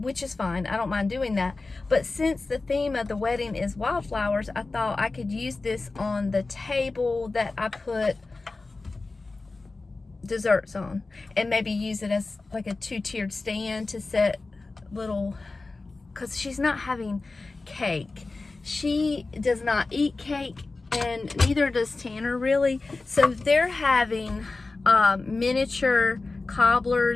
is fine. I don't mind doing that. But since the theme of the wedding is wildflowers, I thought I could use this on the table that I put desserts on, and maybe use it as like a two-tiered stand to set little, because she's not having cake. She does not eat cake, and neither does Tanner really. So they're having miniature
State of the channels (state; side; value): quieter; right; 3.6 dB